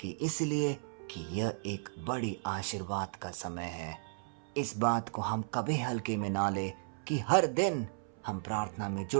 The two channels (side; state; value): left; silent; 55 dB below the other